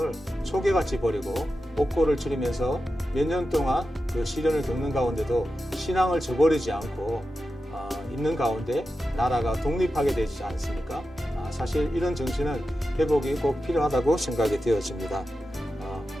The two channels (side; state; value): both; normal; correlation 0.91